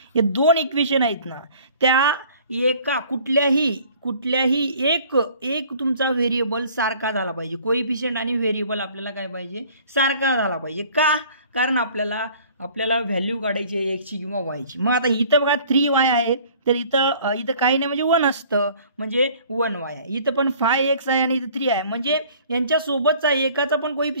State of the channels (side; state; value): both; inverted; correlation -0.52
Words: हे 2 इक्वेशन आहेत ना, त्या एका कुठल्याही एक तुमचा व्हेरिएबल सारखा झाला पाहिजे. कोइफिशियंट आणि व्हेरिएबल आपल्याला काय पाहिजे, सारखा झाला पाहिजे. का? कारण आपल्याला व्हॅल्यू काढायची आहे एक्सची किंवा वायची. मग आता इथं बघा 3y आहे, तर इथं काही नाही, म्हणजे 1 असतं, म्हणजे 1y आहे. इथं पण 5x आहे आणि इथं 3 आहे, म्हणजे यांच्यासोबतचा एकाचा पण